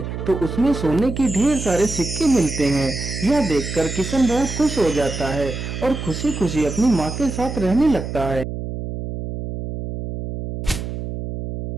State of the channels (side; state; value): right; noise; hum, 6 dB below the sound